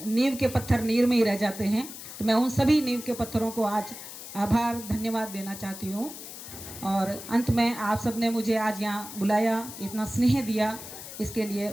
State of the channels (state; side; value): noise; left; hiss, 12 dB below the sound